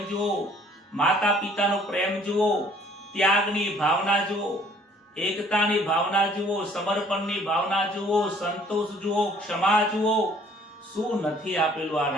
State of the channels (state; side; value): normal; both; correlation 0.58